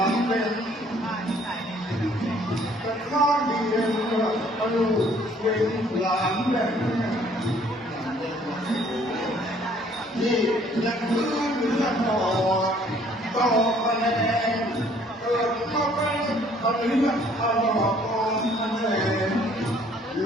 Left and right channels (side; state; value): both; normal; correlation 0.60